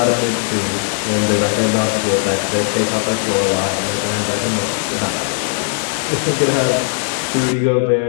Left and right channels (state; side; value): silent; right; digital silence